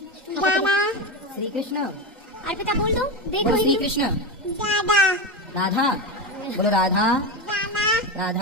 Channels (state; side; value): normal; both; correlation 0.17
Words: श्री कृष्ण। अर्पिता बोल दो। देखो बोलो श्री कृष्ण। दादा राधा। बोलो राधा दादा